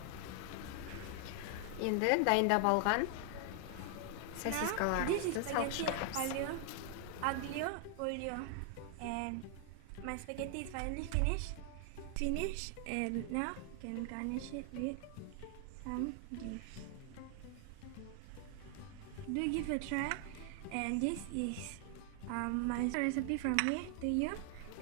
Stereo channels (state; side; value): different; both; correlation 0.00